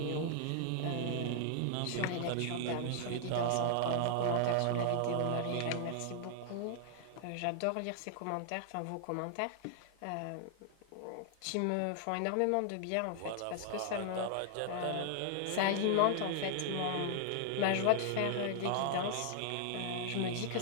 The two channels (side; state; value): both; different; correlation 0.00